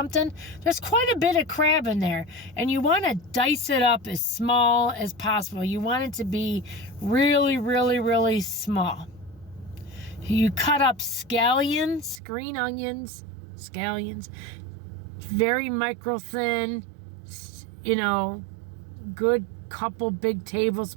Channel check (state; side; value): drops out; left; at 12.2 s